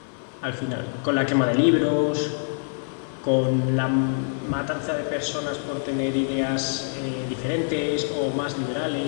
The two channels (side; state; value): right; silent; 62 dB below the other